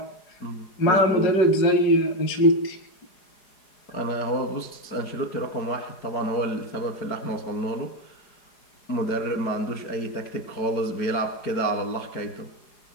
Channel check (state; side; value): late; right; 4.8 ms